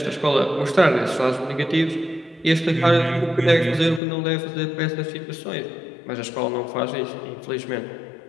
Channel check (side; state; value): right; drops out; at 4.0 s